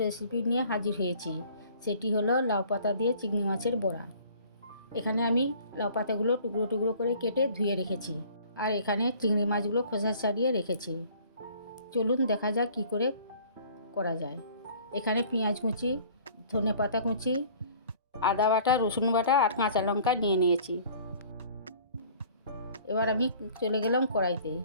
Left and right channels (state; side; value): inverted; both; correlation -0.52